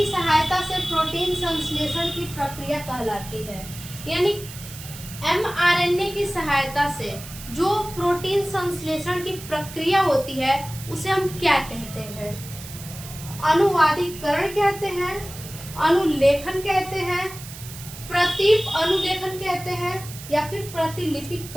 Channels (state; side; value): noise; right; hiss, 14 dB below the sound